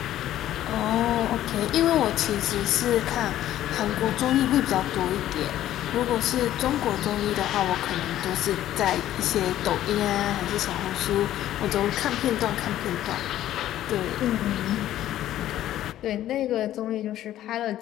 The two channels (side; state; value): right; quieter; 12.9 dB